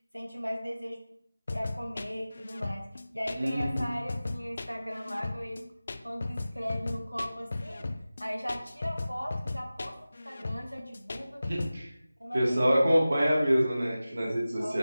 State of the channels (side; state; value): both; inverted; correlation -0.96